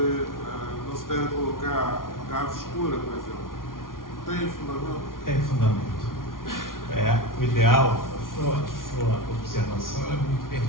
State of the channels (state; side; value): late; right; 0.90 ms